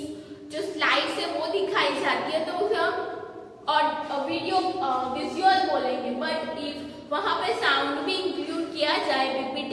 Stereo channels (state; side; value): identical; both; correlation 1.00